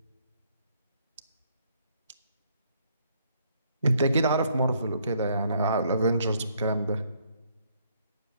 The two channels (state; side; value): inverted; both; correlation -0.68